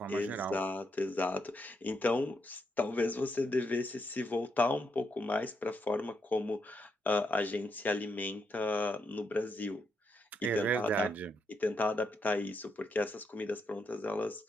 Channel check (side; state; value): both; normal; correlation 0.80